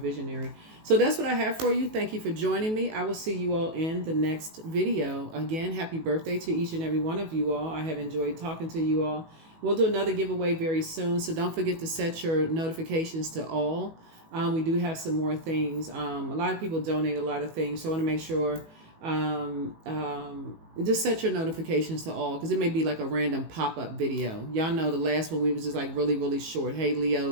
So that's what I have for you. Thank you for joining me. I will see you all in the next video. Again, happy birthday to each and every one of you all. I have enjoyed talking to you all. We'll do another giveaway very soon, so don't forget to set your notifications to all. We do have some more things. A lot of people donate a lot of things, so I want to make sure just set your notifications to all, because it may be like a random pop-up video. Y'all know the last one we was just like really, really short. Hey,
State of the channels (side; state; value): left; late; 18 ms